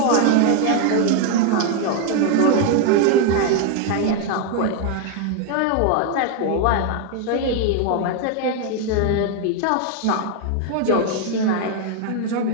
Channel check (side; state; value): both; different; correlation 0.01